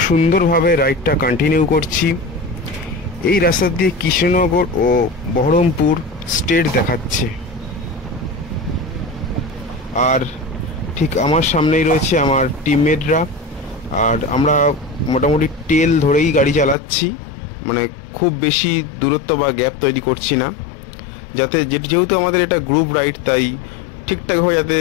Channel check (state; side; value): drops out; right; at 16.8 s